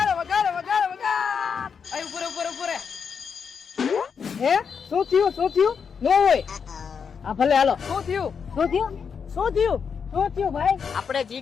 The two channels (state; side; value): quieter; right; 6.4 dB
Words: વગાડ વગાડ વગાડ. આય ઉપર ઉપર ઉપર. હે શું થયું નો હોય. હા ભલે હાલો. શું થયું? શું થયું ભાઈ? આપણે